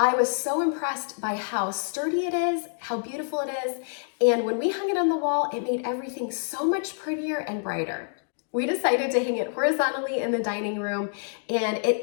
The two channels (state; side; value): silent; right; digital silence